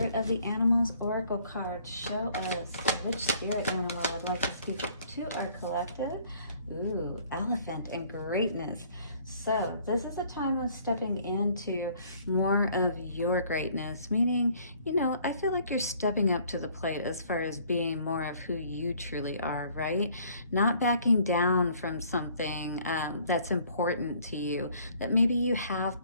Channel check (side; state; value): both; inverted; correlation -0.59